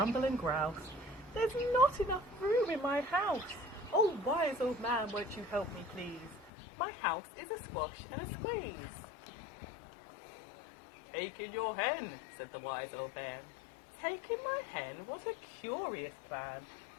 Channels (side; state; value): right; drops out; at 6.5 s